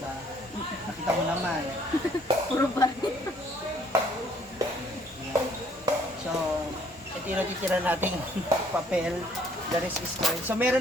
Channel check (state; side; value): normal; both; correlation 0.62